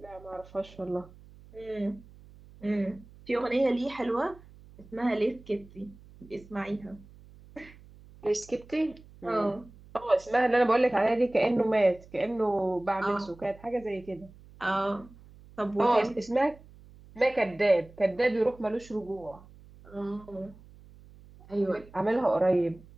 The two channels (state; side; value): noise; right; hum, 22 dB below the sound